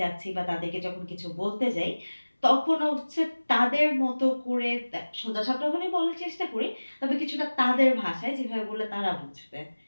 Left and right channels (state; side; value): inverted; both; correlation -1.00